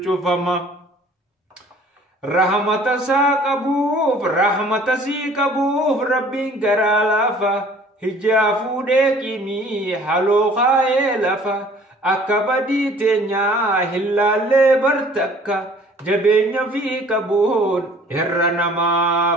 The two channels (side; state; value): both; normal; correlation 0.53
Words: شفما رحمة ساقبوف رحمة سيقبوف ربين قرالافا هجافو ديكيمي حلو خايلافا أكبدي تنيا هلالي برتكا جبين في كبون إرنما